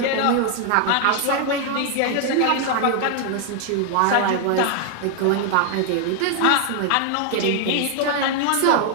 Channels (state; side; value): different; both; correlation 0.00